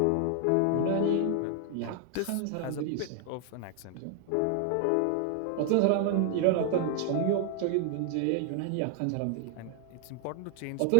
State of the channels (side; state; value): both; different; correlation 0.00